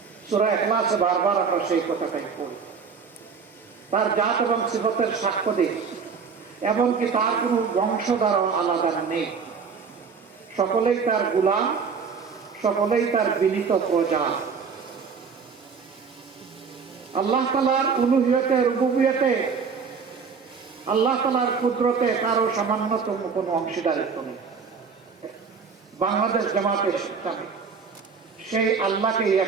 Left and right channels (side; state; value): left; quieter; 5.7 dB